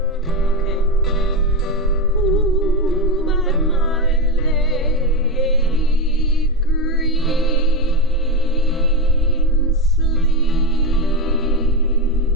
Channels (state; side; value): normal; both; correlation 0.12